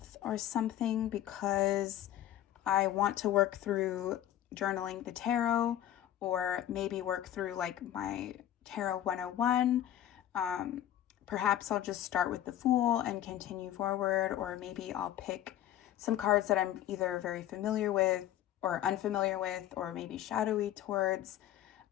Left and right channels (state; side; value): quieter; right; 12.1 dB